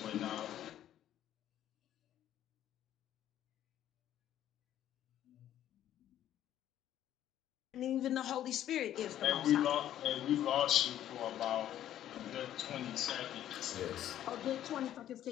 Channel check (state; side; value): quieter; right; 11.7 dB